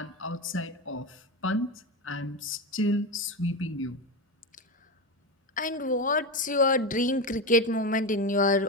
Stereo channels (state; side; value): normal; both; correlation 0.17